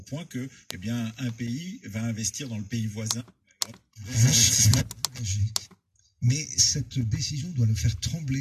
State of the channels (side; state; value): both; identical; correlation 1.00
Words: que, eh bien, un pays va investir dans le pays voisin. Mais cette décision doit le faire